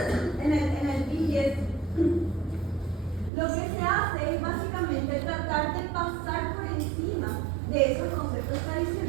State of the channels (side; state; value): left; drops out; at 3.3 s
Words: en el P10, lo que se hace es básicamente tratar de pasar por encima de esos conceptos